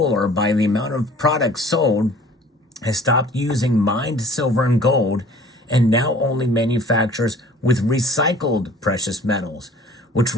by the amount of products sold, has stopped using mined silver and gold and now only manufactures with recycled precious metals, which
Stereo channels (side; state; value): both; normal; correlation 0.50